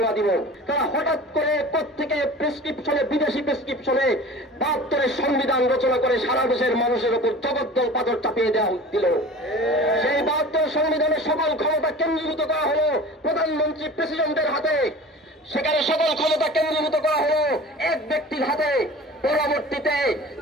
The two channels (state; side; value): normal; both; correlation 0.39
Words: দিব। তারা হঠাৎ করে প্রত্যেকে প্রেসক্রিপশনে, বিদেশি প্রেসক্রিপশনে 72-এর সংবিধান রচনা করে সারা দেশের মানুষের উপর জগদ্দল পাথর চাপিয়ে দেওয়া দিল। সেই 72 সংবিধানের সকল ক্ষমতা কেন্দ্রীভূত করা হলো প্রধানমন্ত্রী, প্রেসিডেন্টের হাতে। সেখানে সকল ক্ষমতা কেন্দ্রীভূত করা হলো এক ব্যক্তির হাতে। পরবর্তীতে